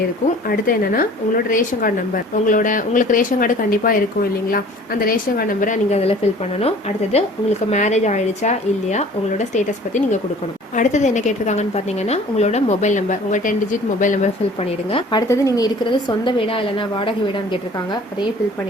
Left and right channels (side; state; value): both; normal; correlation 0.49